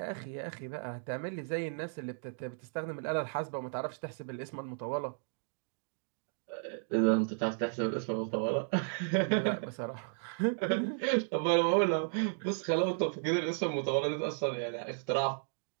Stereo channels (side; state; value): left; silent; digital silence